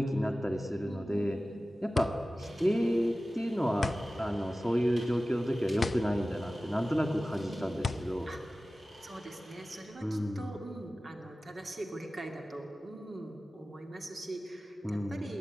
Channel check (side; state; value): both; normal; correlation 0.96